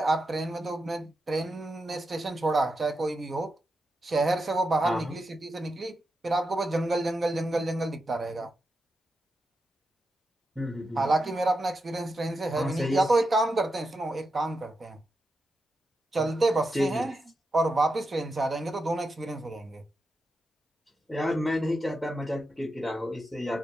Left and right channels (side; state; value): both; normal; correlation 0.87